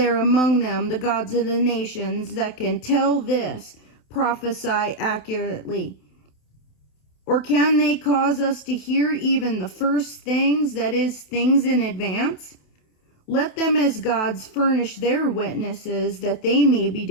among them, the gods of the nations, that can tell this, prophesy accurately? Or can they cause us to hear even the first things, that is, things in advance? Let them as gods furnish their witnesses, that they may be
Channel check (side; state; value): right; late; 28 ms